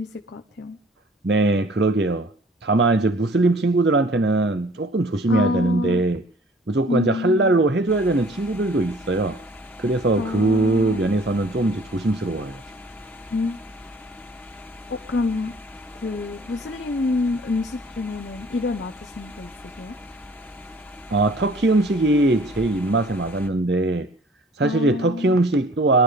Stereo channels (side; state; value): both; normal; correlation 0.52